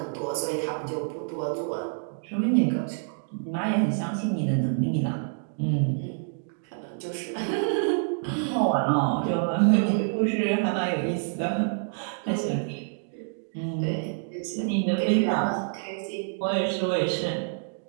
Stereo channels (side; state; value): left; silent; digital silence